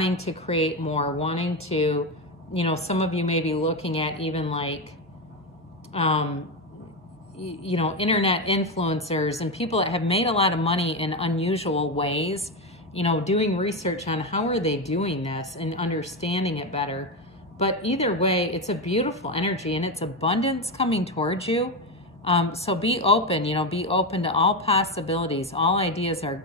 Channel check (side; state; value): both; normal; correlation 0.12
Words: to create more, wanting to, you know, some of you may be looking at even like, you know, internet influencers and people that have made a lot of money in unusual ways, you know, doing research on how are they doing this and understanding it better. But either way, it's a beautiful energy and it's abundance coming towards you. So be open, you know, be open to all possibilities. All ideas are